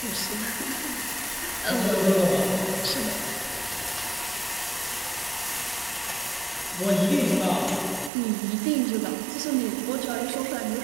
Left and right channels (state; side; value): drops out; left; at 8.1 s